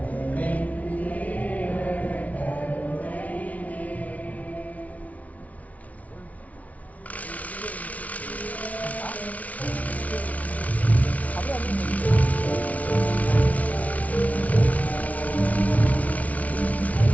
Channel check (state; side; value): late; right; 0.069 ms